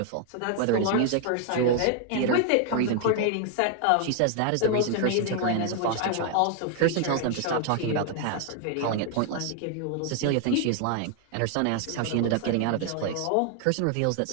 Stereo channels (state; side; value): different; both; correlation 0.00